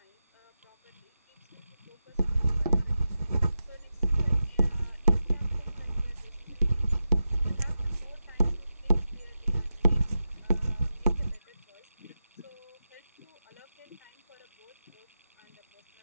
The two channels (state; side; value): inverted; both; correlation -0.90